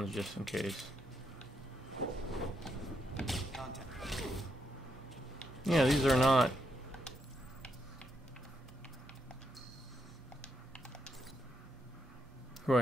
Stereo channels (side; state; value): both; normal; correlation 0.79